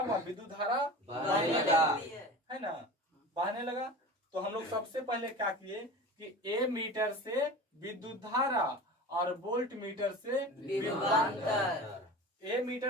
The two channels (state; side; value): normal; both; correlation 0.34